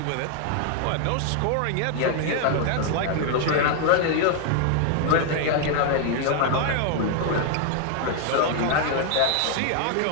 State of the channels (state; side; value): different; both; correlation 0.00